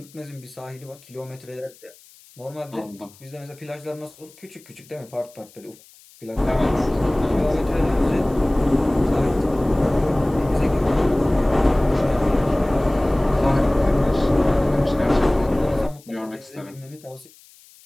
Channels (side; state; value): left; noise; hiss, 25 dB below the sound